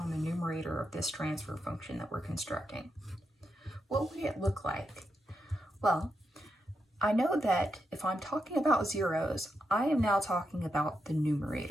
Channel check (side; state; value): both; normal; correlation 0.84